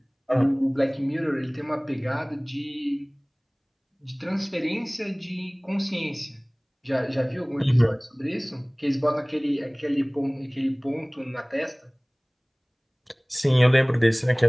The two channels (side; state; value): both; identical; correlation 1.00